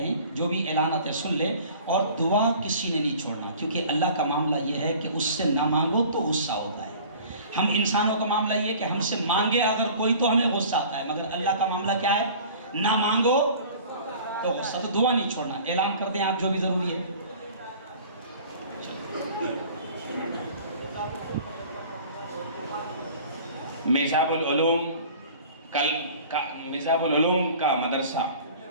جو بھی اعلانات ہے سن لیں، اور دعا کسی نے نہیں چھوڑنا، کیونکہ اللہ کا معاملہ یہ ہے کہ اس سے نہ مانگو تو غصہ ہوتا ہے۔ ہم انسانوں کا معاملہ یہ کہ ہم سے مانگے اگر کوئی تو ہمیں غصہ آتا ہے، مگر اللہ کا معاملہ کیا ہے؟ نہ مانگو تو غصہ، تو دعا نہیں چھوڑنا۔ اعلان کر دیں آپ جو بھی ضروری ہے۔ میزاب العلوم کا مدرسہ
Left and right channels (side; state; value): both; inverted; correlation -0.46